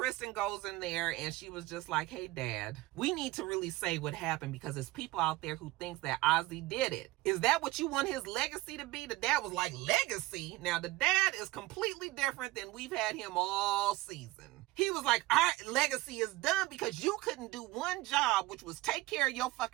goes in there and she was just like, hey, Dad, we need to really say what happened because there's people out there who thinks that Azie did it. Is that what you want his legacy to be? The dad was like, legacy? Now, the dad is completely different than we've had him all season. He was like, our legacy is done because you couldn't do one job, which was take care of your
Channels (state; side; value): quieter; left; 19.1 dB